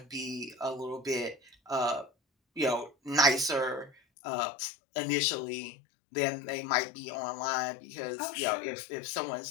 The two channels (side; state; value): right; drops out; at 4.0 s